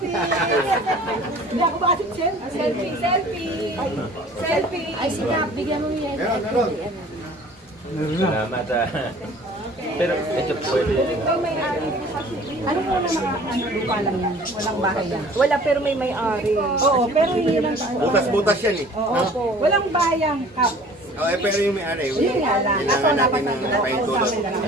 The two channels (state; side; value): normal; both; correlation 0.49